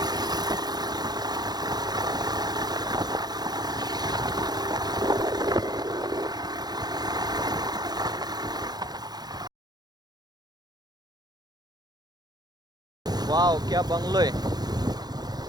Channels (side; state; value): left; late; 0.19 ms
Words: वाव, क्या बंगलो है.